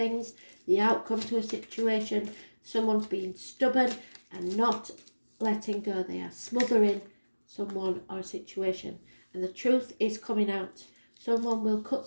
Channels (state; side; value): inverted; both; correlation -1.00